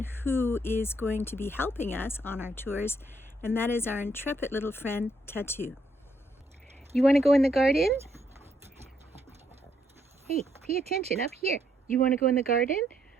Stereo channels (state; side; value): normal; both; correlation 0.73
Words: who is going to be helping us on our tours, and that is our intrepid little friend, Tattoo. You want to go in the garden? Hey, pay attention up here. You want to go in the garden?